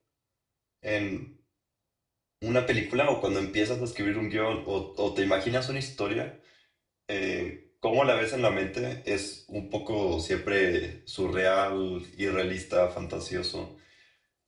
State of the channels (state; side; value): identical; both; correlation 1.00